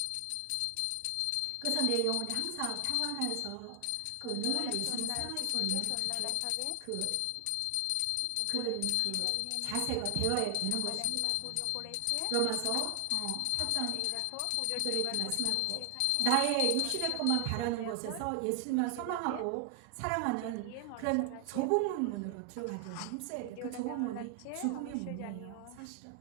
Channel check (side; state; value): both; different; correlation 0.00